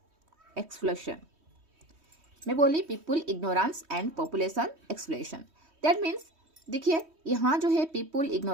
एक्सप्लोशन। मैं बोली people ignorance and population explosion. That means देखिए, यहाँ जो है पीपुल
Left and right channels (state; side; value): late; left; 3.2 ms